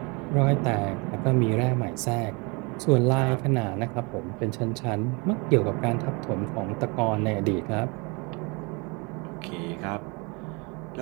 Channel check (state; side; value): quieter; left; 29.8 dB